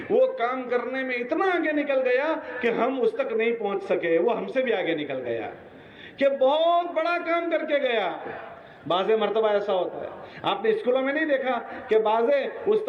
وہ کام کرنے میں اتنا آگے نکل گیا کہ ہم اس تک نہیں پہنچ سکے، وہ ہم سے بھی آگے نکل گیا، کہ بہت بڑا کام کر کے گیا۔ بعض مرتبہ ایسا ہوتا ہے، آپ نے اسکولوں میں نہیں دیکھا کہ بعض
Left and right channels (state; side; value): identical; both; correlation 1.00